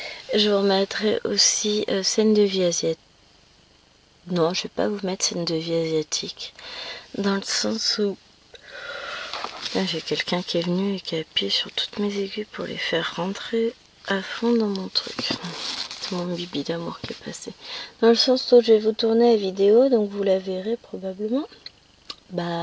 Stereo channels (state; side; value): identical; both; correlation 1.00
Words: Je vous remettrai aussi scène de vie asiatique. Non, je vais pas vous mettre scène de vie asiatique. Dans le sens où J'ai quelqu'un qui est venu et qui a appuyé sur toutes mes aiguilles pour les faire rentrer à fond dans mon truc. C'est mon bibi d'amour qui est passé. Dans le sens où je vais vous tourner la vidéo, donc vous la verrez probablement.